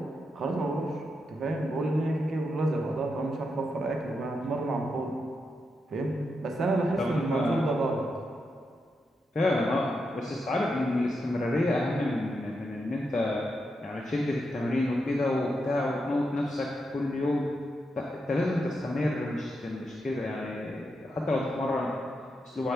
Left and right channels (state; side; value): normal; both; correlation 0.85